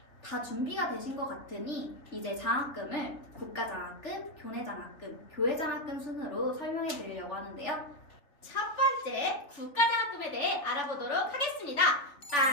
다 준비가 되신 것 같으니 이제 장학금을 국가장학금, 교내장학금, 교회장학금 순으로 설명해 드리려고 하는데요. 첫 번째 국가장학금에 대해 알아보도록 하겠습니다.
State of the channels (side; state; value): right; late; 3.3 ms